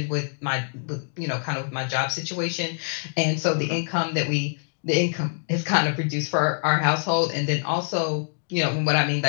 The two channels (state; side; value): silent; right; digital silence